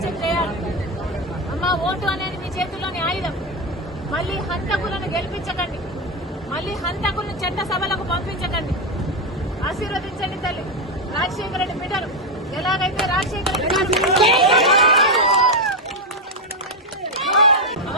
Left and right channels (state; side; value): normal; both; correlation 0.07